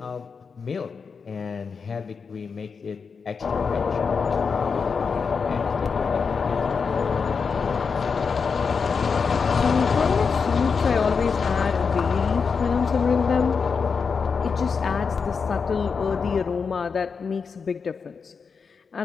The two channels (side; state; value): right; quieter; 5.5 dB